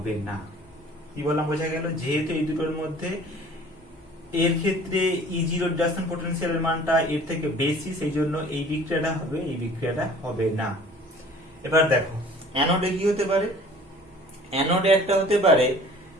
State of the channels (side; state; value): both; normal; correlation 0.49